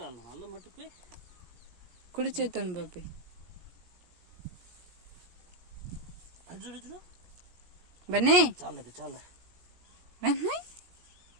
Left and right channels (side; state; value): left; late; 17 ms